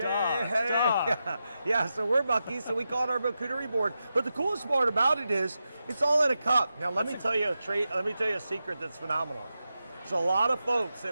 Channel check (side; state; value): both; inverted; correlation -0.90